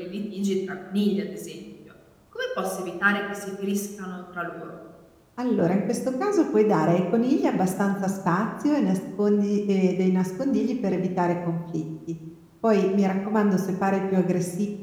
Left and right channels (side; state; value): both; identical; correlation 1.00